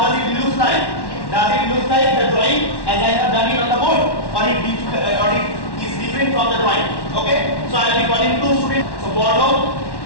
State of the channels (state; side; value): late; right; 1.1 ms